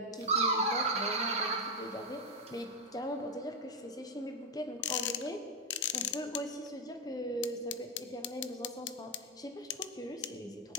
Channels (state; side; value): normal; both; correlation 0.05